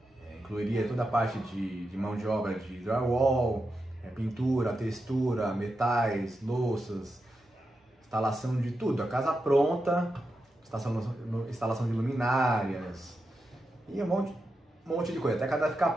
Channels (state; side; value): normal; both; correlation 0.88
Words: Incluiria toda a parte de mão de obra de drywall, pintura, textura, metais, louças, instalação de tudo. A casa pronta, instalação de luminárias e um monte de coisa, até a casa ficar